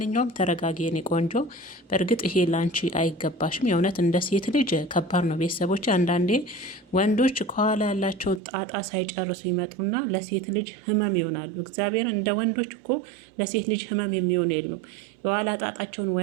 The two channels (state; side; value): drops out; left; at 8.4 s